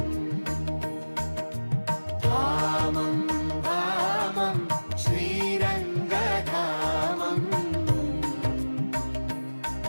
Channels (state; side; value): inverted; both; correlation -1.00